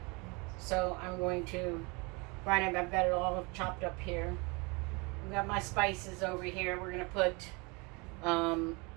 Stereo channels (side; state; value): left; quieter; 28.7 dB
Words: So I'm going to grind it. I've got it all chopped up here. I've got my spices over here. We're going to put, and